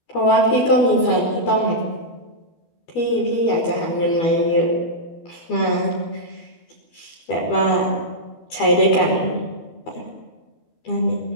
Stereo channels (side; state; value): right; late; 12 ms